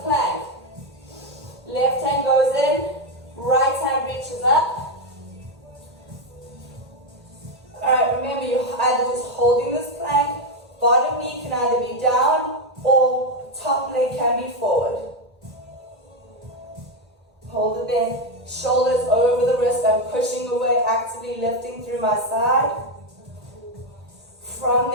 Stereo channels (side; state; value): both; normal; correlation 0.06